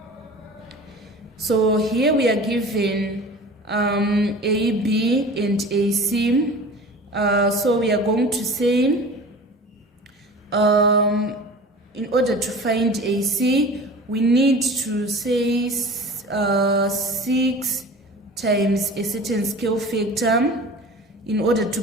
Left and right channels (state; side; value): normal; both; correlation 0.39